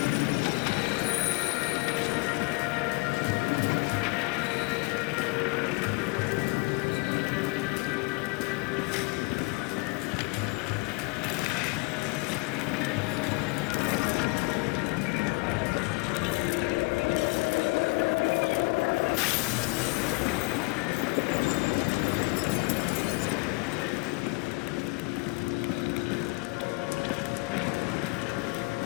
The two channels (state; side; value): quieter; right; 28.4 dB